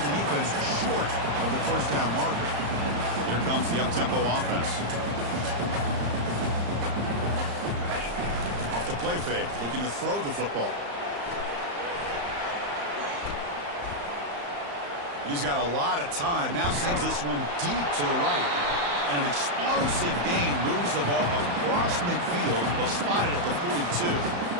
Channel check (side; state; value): left; late; 35 ms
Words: the defense short of the first down marker. Here comes the up-tempo offense. Off the play fake, looking to throw the football. He's got a lot of time. Now sends this one deep to the right. And an explosive gain moves the ball across midfield, well spotted at the 42.